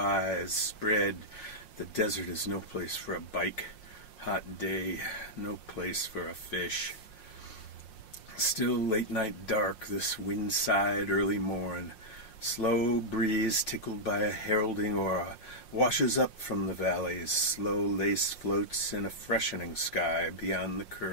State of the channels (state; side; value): late; right; 5.6 ms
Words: spread. The desert is no place for a bike. Hot day, no place for a fish. Still late night dark, this wind-side early morn. Slow breeze tickled by a heralding aura washes up from the valleys. Slow lace floats in a freshening sky beyond the